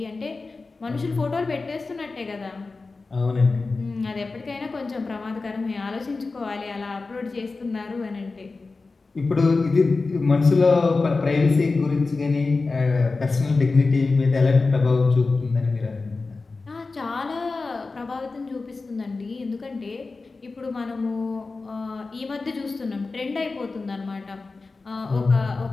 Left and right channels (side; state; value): right; quieter; 3.9 dB